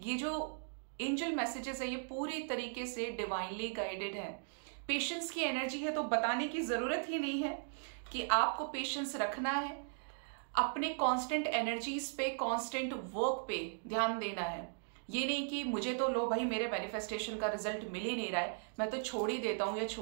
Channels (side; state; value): left; silent; digital silence